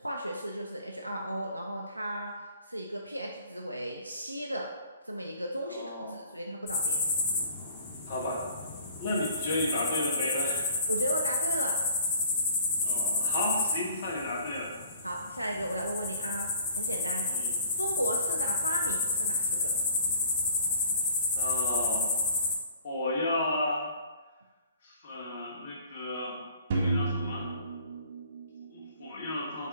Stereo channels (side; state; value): both; inverted; correlation -0.52